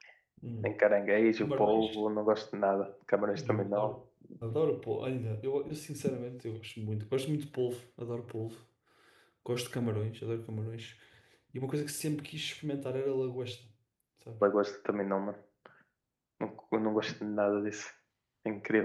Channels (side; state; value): both; identical; correlation 1.00